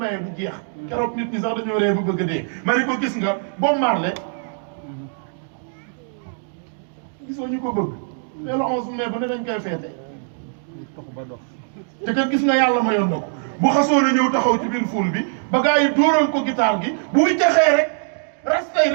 du jeex keroog nit ñi sax dañoo ree ba bëgg a dee ma ne ko gis nga Bob Marley gisoo ñu ko bëgg mais le 11 mai ba ne dañ koy feete te kat gis nga yàlla mayoon na ko bu xasoo na ñëw taxaw ci biir ful bi ba gars yi dóoral ko guitare gi bu wiccaxee rek rastay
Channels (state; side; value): silent; left; digital silence